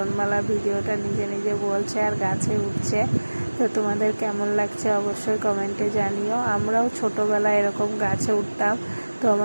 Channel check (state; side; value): inverted; both; correlation -1.00